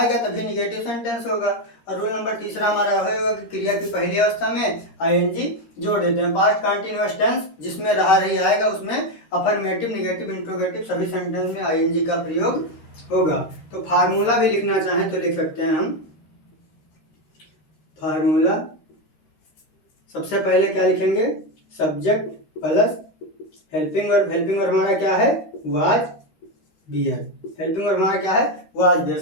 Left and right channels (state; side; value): late; right; 13 ms